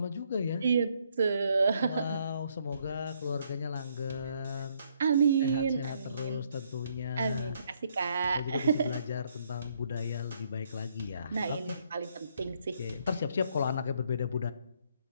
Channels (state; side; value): inverted; both; correlation -0.70